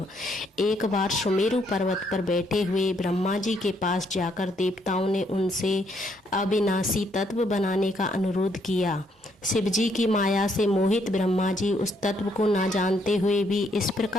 एक बार सुमेरु पर्वत पर बैठे हुए ब्रह्मा जी के पास जाकर देवताओं ने उनसे अविनाशी तत्व बनाने का अनुरोध किया। शिव जी की माया से मोहित ब्रह्मा जी उस तत्व को ना जानते हुए भी इस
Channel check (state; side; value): normal; both; correlation 0.71